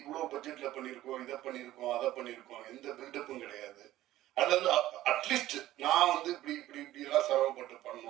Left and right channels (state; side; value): quieter; left; 14.8 dB